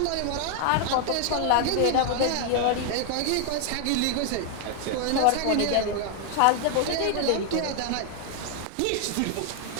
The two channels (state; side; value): different; both; correlation 0.00